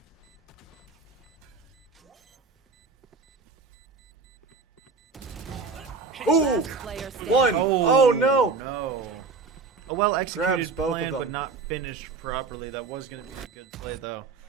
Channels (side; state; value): left; quieter; 4.4 dB